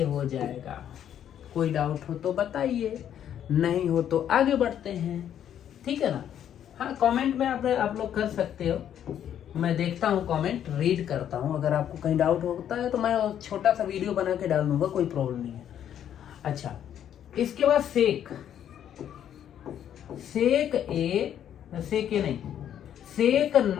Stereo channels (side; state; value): right; quieter; 10.0 dB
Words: हो जाएगा। कोई डाउट हो तो बताइए, नहीं हो तो आगे बढ़ते हैं। ठीक है ना? हाँ, कमेंट में आप लोग कर सकते हो। मैं देखता हूँ कमेंट, रीड करता हूँ। अगर आपको कहीं डाउट होता है तो मैं छोटा सा वीडियो बना के डाल दूंगा, कोई प्रॉब्लम नहीं है। अच्छा, इसके बाद सेक ए नहीं, सेक